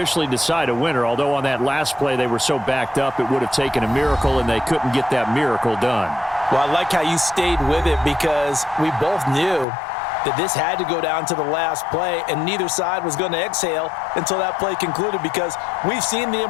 decide a winner, although on that last play they were so backed up it would have taken a miracle, and they couldn't get that miracle done. Well, I like how you stayed with it because we both knew that this had to go down to the last play, and neither side was going to exhale until that play concluded because we've seen the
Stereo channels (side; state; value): right; drops out; at 9.7 s